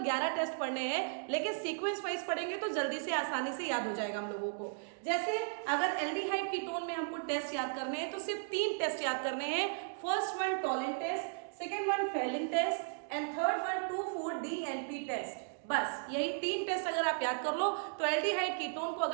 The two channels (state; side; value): silent; left; digital silence